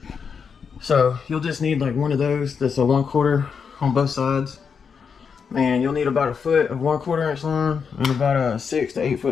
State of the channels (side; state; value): right; quieter; 6.2 dB